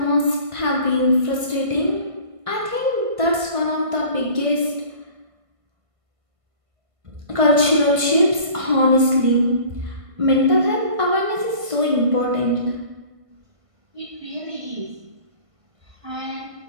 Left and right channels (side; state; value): left; late; 1.5 ms